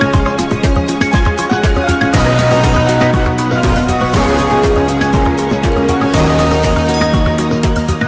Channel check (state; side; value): identical; both; correlation 1.00